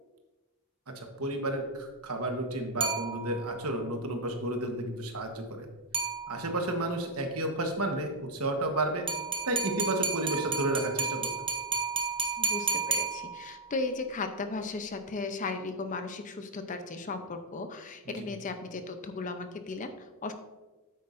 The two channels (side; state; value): both; normal; correlation -0.02